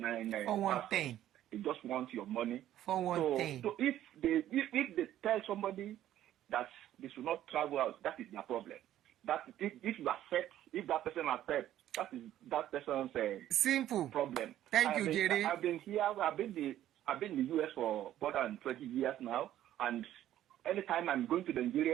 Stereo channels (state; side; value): quieter; left; 12.5 dB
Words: They just want your money. For one thing. So if they tell somebody that they should not travel out, that is their problem. That if you accept, if that person accepts, that is that person's simple problem. Thank you, Jerry. I've been here. I've been in the US for more than 20 years now, and anytime I'm going to